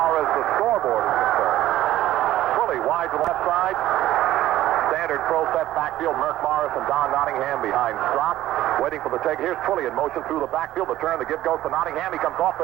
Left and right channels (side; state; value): left; quieter; 14.3 dB